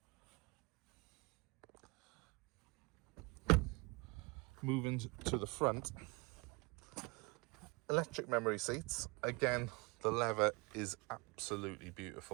Moving to the front, electric memory seats. Again, the leather is absolutely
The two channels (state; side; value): quieter; left; 27.1 dB